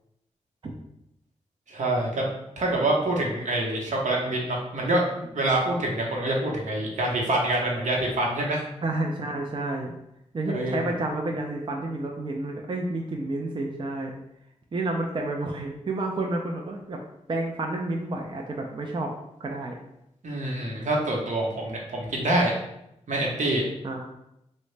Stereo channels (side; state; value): both; normal; correlation 0.49